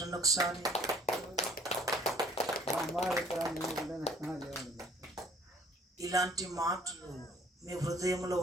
ఒకసారి. ఇలాంటి మాటలు మీ హృదయంలో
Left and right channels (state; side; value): normal; both; correlation 0.56